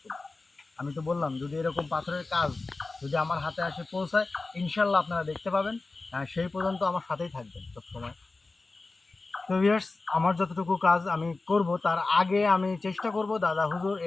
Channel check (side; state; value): right; quieter; 3.5 dB